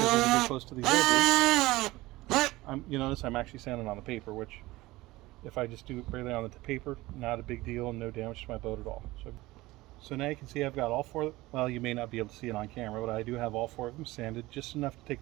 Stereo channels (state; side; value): quieter; left; 19.2 dB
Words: when you get close to these edges, you notice I'm actually sanding on the paper, which if I just do it barely on the paper, not a big deal, no damage to my boat at all. So now you can see I've got all 4, well, you may not be able to see it on camera, but I do have all 4 of them sanded, just enough to